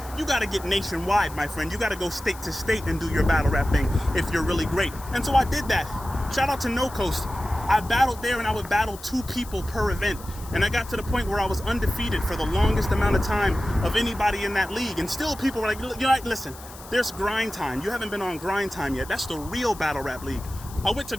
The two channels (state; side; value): noise; left; hiss, 18 dB below the sound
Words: nationwide, my friend. You gotta go state to state and do your battle rap thing if you're really great. And so I did that. Shout out to No Coast. I battled there, and I would battle 2 people per event. And I got to the point where I was undefeated for the longest amount of time of anybody in that league. And still people were like, you're like, listen, there's Grind Time. You haven't been on Grind Time yet. That's the real battle rap league. I went to